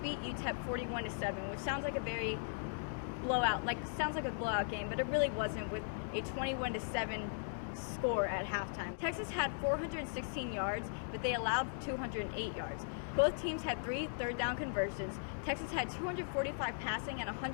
UTEP 41-7, which sounds like a very sounds like a blowout game, but it really wasn't, with a 21-7 score at halftime. Texas had 416 yards, but they allowed 208 yards. Both teams had 3 third-down conversions. Texas had 245 passing and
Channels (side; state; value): right; silent; digital silence